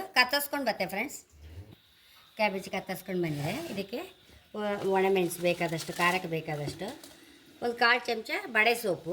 ಕತ್ತರಿಸ್ಕೊಂಡು ಬತ್ತೆ ಫ್ರೆಂಡ್ಸ್. ಕ್ಯಾಬೇಜಿ ಕತ್ತರಿಸ್ಕೊಂಡು ಬಂದಿದೆ. ಇದಕ್ಕೆ ಒಣಮೆಣಸು ಬೇಕಾದಷ್ಟು, ಖಾರಕ್ಕೆ ಬೇಕಾದಷ್ಟು, ಒಂದು 1/4 ಚಮಚ ಬಡೆ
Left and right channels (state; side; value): identical; both; correlation 1.00